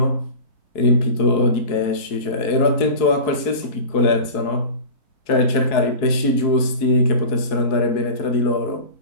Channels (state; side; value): late; right; 4.6 ms